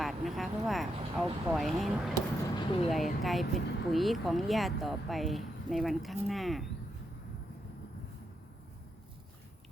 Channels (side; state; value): both; normal; correlation 0.82